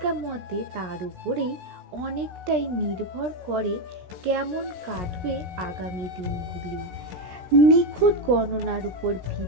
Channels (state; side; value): late; left; 17 ms